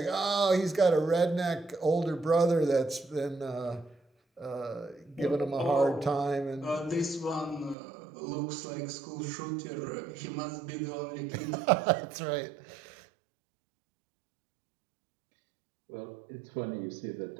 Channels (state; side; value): drops out; left; at 7.8 s